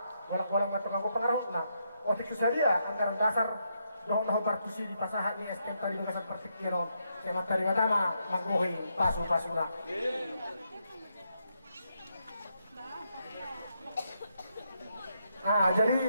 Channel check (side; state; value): both; inverted; correlation -0.79